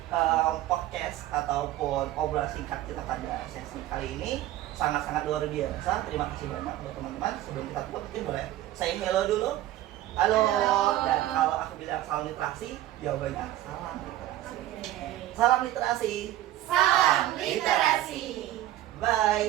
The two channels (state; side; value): quieter; left; 14.2 dB